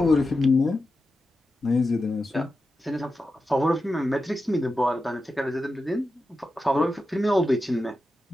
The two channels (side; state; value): both; normal; correlation 0.90